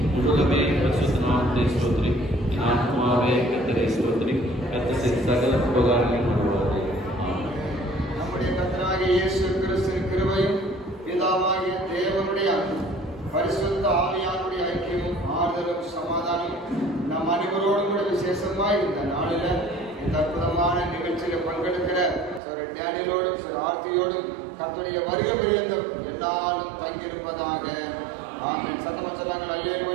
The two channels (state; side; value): drops out; left; at 22.4 s